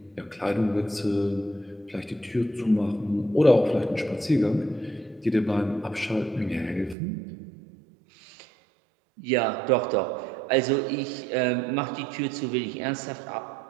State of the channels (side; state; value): left; drops out; at 7.0 s